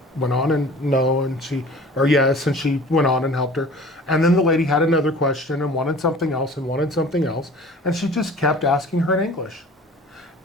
went on and no, and she, or yes, and she went on and helped her. And then the lady had another question and wanted something else and wanted something else. And she just kept asking her in English.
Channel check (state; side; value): normal; both; correlation 0.45